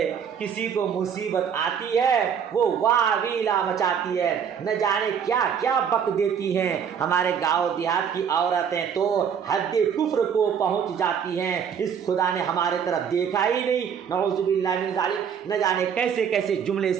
کسی کو مصیبت آتی ہے وہ واویلا مچاتی ہے، نہ جانے کیا کیا بک دیتی ہیں. ہمارے گاؤں دیہات کی عورتیں تو حد کفر کو پہنچ جاتی ہیں، اس خدا نے ہمارے طرف دیکھا ہی نہیں، نعوذ باللہ من ذالک. نہ جانے کیسے کیسے جملے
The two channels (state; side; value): quieter; left; 7.6 dB